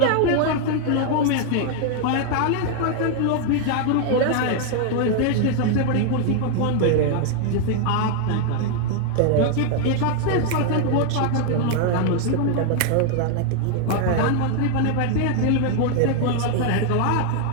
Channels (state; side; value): different; both; correlation 0.00